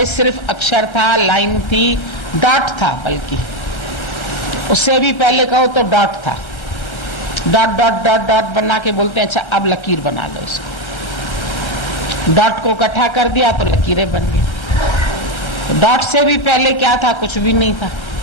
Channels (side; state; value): right; late; 1.3 ms